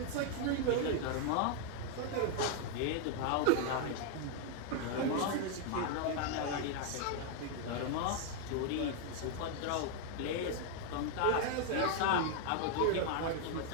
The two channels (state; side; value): different; both; correlation 0.00